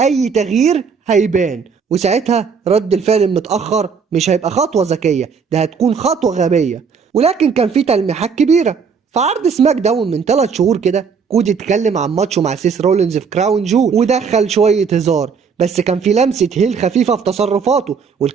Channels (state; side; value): quieter; left; 5.9 dB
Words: تغيير هيبان، وساعتها رد الفعل المتأخر مش هيبقى خطوة ذكية، ده هتكون خطوة غبية. ولكن كان في تلميحات كبيرة. في عرض سماك داون من 3 شهور كده كودي اتكلم عن ماتشه مع سيس رولينز في كراون جول ودخل شوية هزار، بس كان في لمسة هيل خفيفة في تصرفاته،